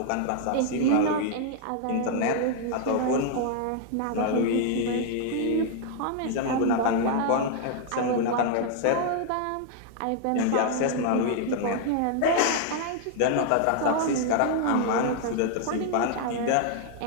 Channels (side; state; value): both; different; correlation 0.00